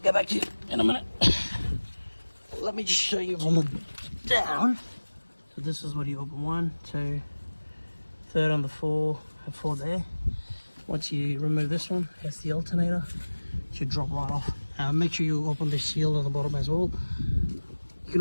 back to you in a minute. Let me just show you from the down. So this is what you open: 1, 2, third on the 4, and 4 there. Once you remove this one, that's the alternator. It should drop right off. Make sure you open the shield on the bottom as well. You can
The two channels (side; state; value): both; inverted; correlation -1.00